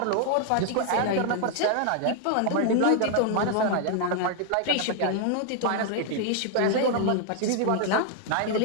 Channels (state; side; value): different; both; correlation 0.00